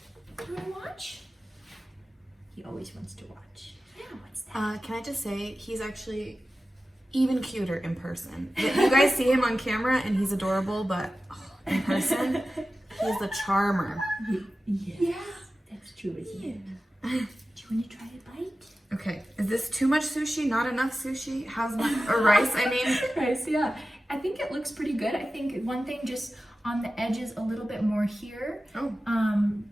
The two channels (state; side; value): normal; both; correlation 0.94